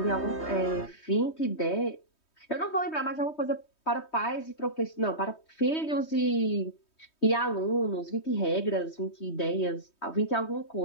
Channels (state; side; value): late; right; 3.2 ms